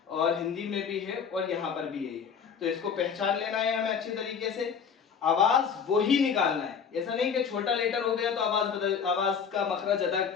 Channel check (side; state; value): right; quieter; 6.7 dB